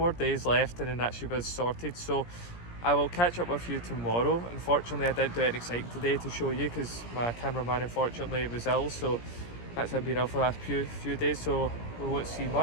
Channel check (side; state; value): right; late; 17 ms